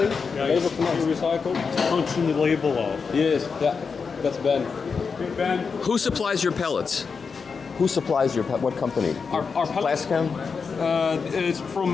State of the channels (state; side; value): quieter; right; 5.4 dB